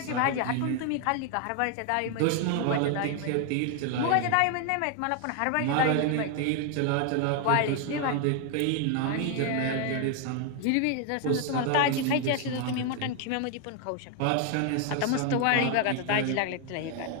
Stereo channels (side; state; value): both; different; correlation 0.00